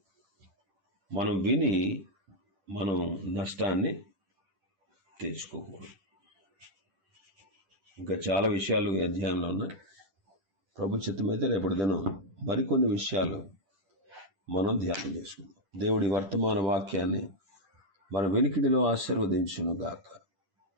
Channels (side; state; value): left; late; 10 ms